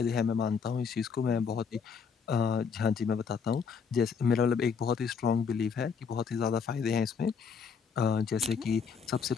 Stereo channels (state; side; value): quieter; right; 6.0 dB